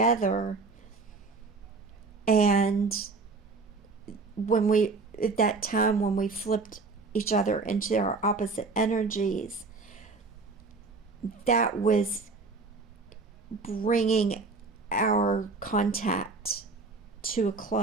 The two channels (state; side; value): quieter; left; 4.0 dB